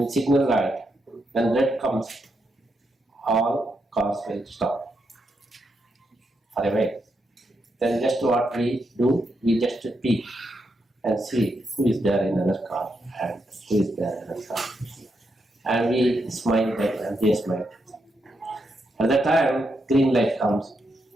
signal light, when red comes, all cars will stop for a while. Then just what we do, we just peek and see who is there in another car and who is there in another car. And we smile back and they smile. At that time, green light comes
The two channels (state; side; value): normal; both; correlation 0.82